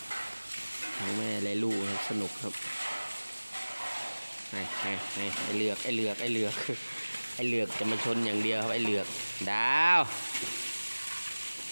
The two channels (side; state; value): both; inverted; correlation -1.00